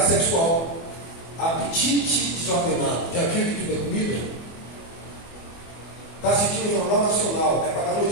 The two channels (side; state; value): right; late; 24 ms